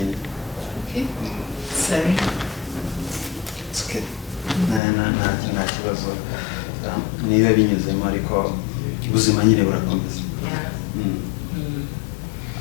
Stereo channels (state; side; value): drops out; right; at 4.8 s